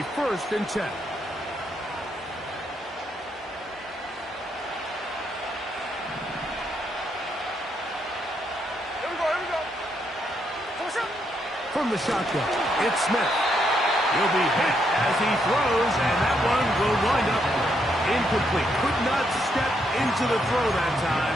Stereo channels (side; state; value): both; normal; correlation 0.77